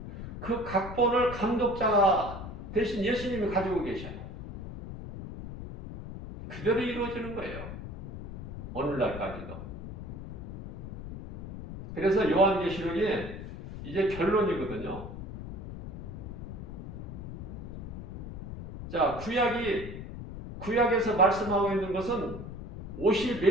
그 각본을 감독자 대신 예수님이 가지고 계셔요. 그대로 이루어지는 거예요. 오늘날까지도. 그래서 요한계시록이 이제 결론이거든요. 자, 구약에서 말씀하고 있는 것은 오실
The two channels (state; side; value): noise; left; rumble, 10 dB below the sound